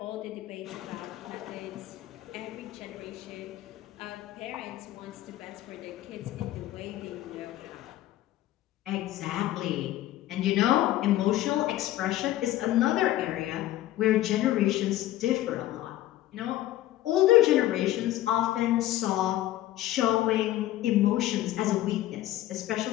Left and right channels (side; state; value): right; quieter; 14.6 dB